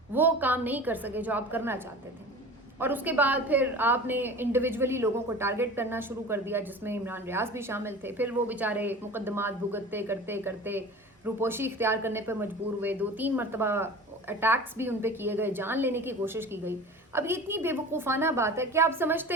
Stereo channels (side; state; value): both; normal; correlation 0.37